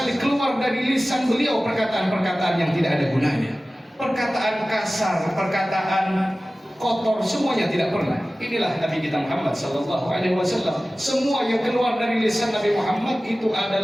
keluar dari lisan beliau perkataan-perkataan yang tidak ada gunanya. Perkataan kasar, perkataan kotor, semuanya tidak pernah. Inilah Nabi kita Muhammad Sallallahu Alaihi Wasallam. Semua yang keluar dari lisan Nabi Muhammad itu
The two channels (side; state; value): both; normal; correlation 0.96